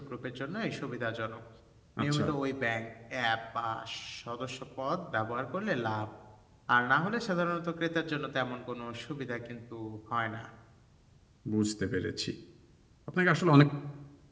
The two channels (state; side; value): identical; both; correlation 1.00